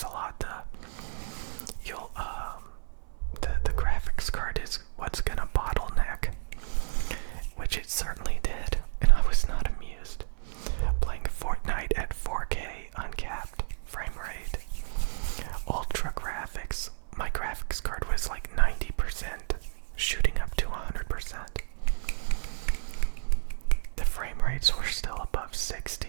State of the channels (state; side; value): silent; left; 57 dB below the other